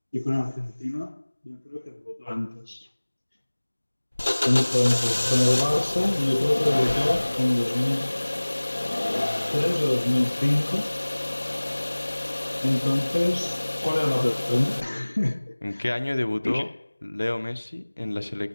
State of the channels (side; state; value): both; inverted; correlation -1.00